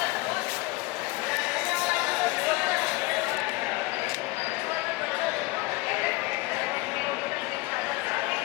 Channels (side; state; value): right; quieter; 22.0 dB